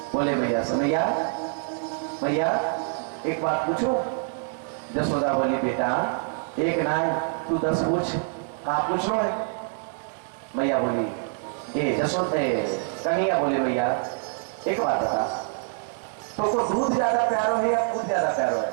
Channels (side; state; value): left; silent; 59 dB below the other